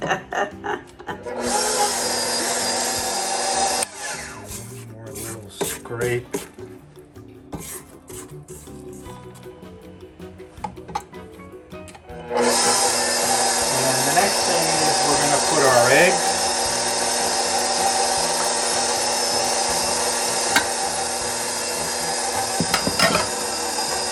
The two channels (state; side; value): identical; both; correlation 1.00